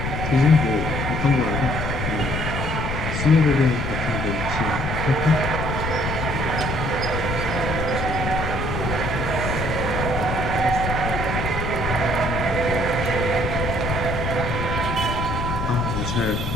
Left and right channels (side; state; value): left; noise; rumble, 3 dB below the sound